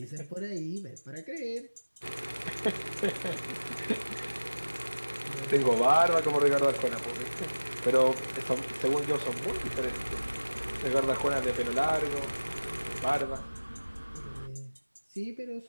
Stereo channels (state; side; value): inverted; both; correlation -1.00